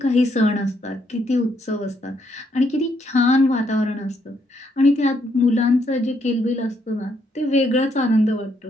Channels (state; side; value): normal; both; correlation 0.74